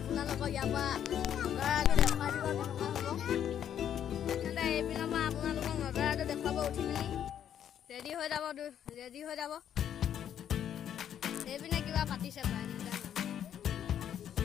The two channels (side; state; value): right; quieter; 9.7 dB